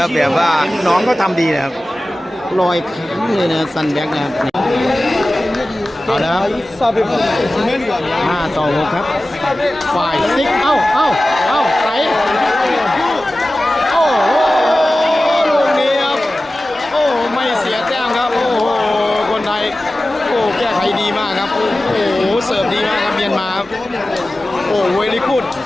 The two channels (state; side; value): normal; both; correlation 0.96